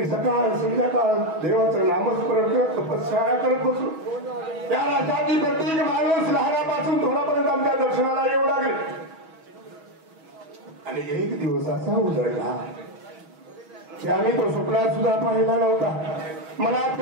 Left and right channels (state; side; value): late; left; 6.3 ms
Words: सकाळ संध्याकाळ देवाचं नामस्मरण करत तपश्चर्या करत बसलो. त्या राष्ट्रातील प्रत्येक माणूस लहानापासून थोडापर्यंत आमच्या दर्शनाला येऊ लागेल. आणि एक दिवस असा उजळला की आम्ही तो स्वप्नात सुद्धा पाहिला नव्हता. मनात